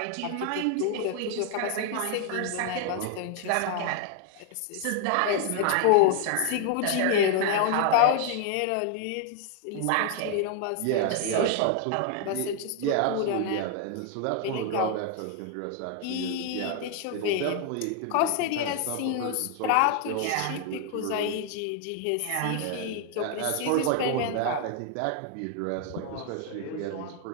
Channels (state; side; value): different; both; correlation 0.00